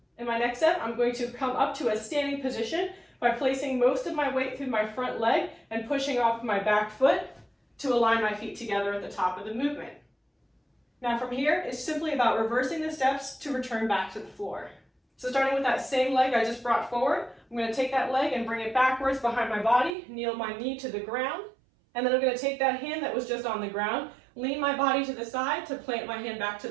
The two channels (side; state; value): left; drops out; at 19.9 s